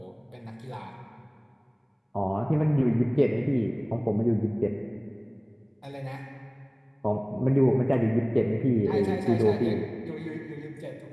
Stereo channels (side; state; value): both; identical; correlation 1.00